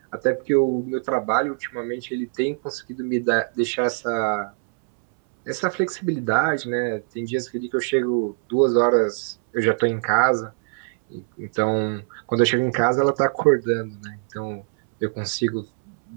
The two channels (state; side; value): silent; left; 63 dB below the other